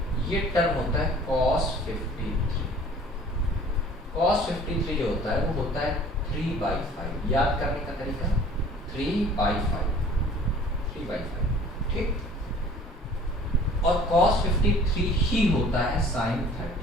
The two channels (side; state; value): both; normal; correlation 0.50